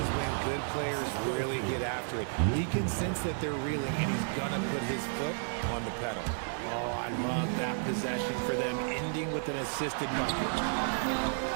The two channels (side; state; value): left; silent; digital silence